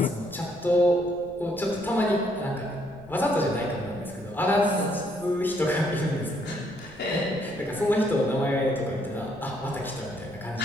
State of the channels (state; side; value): noise; left; rumble, 24 dB below the sound